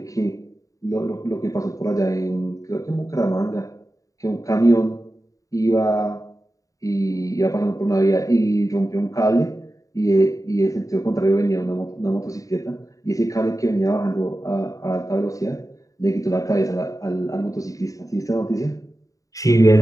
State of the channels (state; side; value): late; right; 0.16 ms